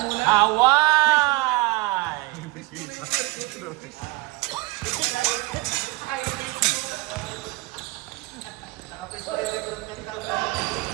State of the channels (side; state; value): left; quieter; 22.5 dB